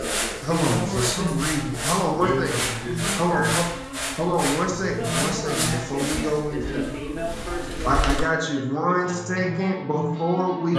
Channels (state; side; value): identical; both; correlation 1.00